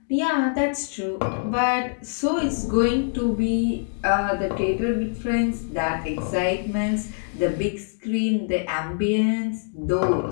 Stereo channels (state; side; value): silent; right; digital silence